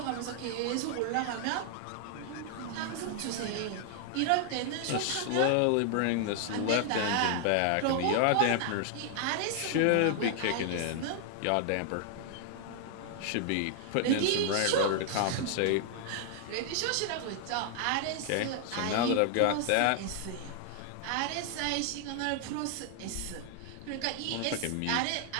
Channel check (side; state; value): both; different; correlation 0.00